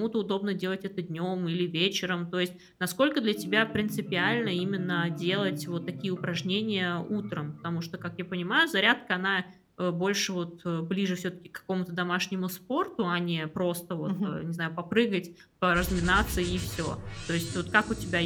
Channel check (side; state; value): both; identical; correlation 1.00